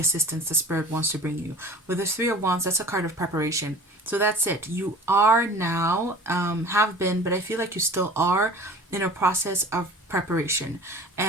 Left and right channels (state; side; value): normal; both; correlation 0.42